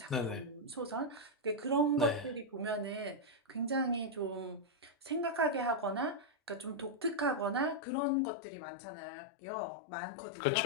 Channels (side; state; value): right; drops out; at 7.8 s